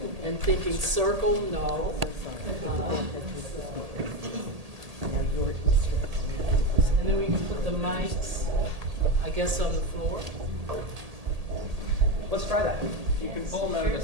and thinking, circle, no. And then we can put the mics, I guess, on the floor. Let's try that. You can pull them out of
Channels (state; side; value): late; left; 1.8 ms